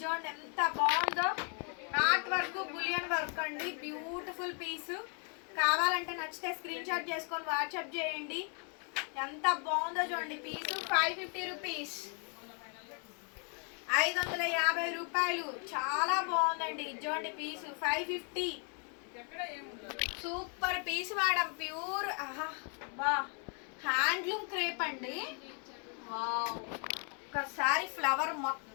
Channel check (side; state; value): right; quieter; 39.8 dB